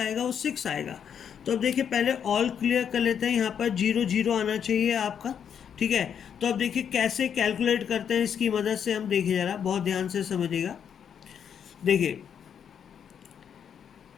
वो 6 आएगा। तो अब देखिए, पहले ऑल क्लियर कर लेते हैं। यहाँ पर 0 0 आना चाहिए आपका। ठीक है, तो अब देखिए कैसे कैलकुलेट करते हैं इसकी मदद से, हम देखिए ज़रा बहुत ध्यान से समझिएगा। देखिए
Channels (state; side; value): quieter; right; 8.1 dB